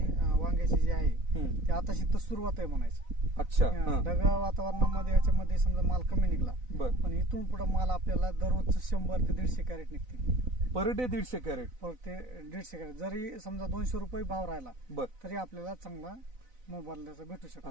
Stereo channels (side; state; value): left; late; 4.0 ms